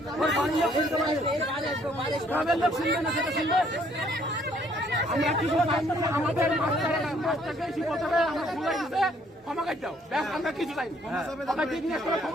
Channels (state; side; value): normal; both; correlation 0.64